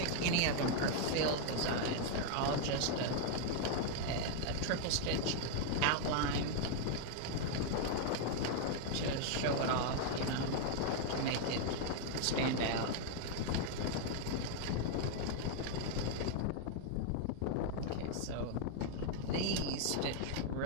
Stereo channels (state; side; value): different; both; correlation 0.00